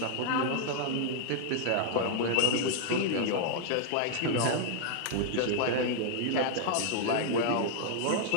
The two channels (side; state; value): both; different; correlation 0.00